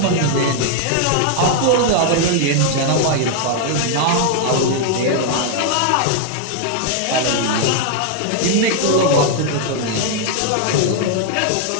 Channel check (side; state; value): both; different; correlation 0.00